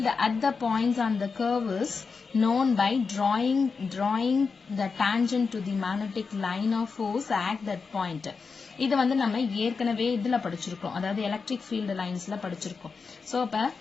at the points on the curve is known by drawing the tangent to the magnetic line of force at that point. இது வந்து நம்ம ஏற்கனவே இதுல படிச்சிருக்கோம் அதாவது electric field லைன்ஸ்ல படிச்சிருக்கோம் சோ அப்ப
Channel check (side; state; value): right; quieter; 4.9 dB